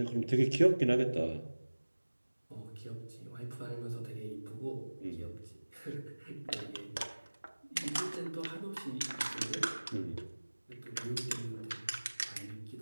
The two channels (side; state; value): both; inverted; correlation -1.00